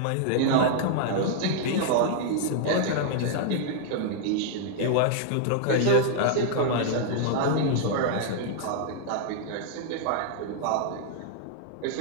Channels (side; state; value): both; different; correlation -0.01